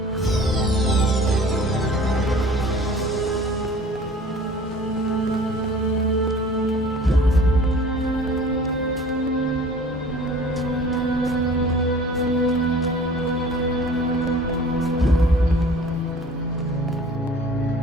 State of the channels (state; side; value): normal; both; correlation 0.46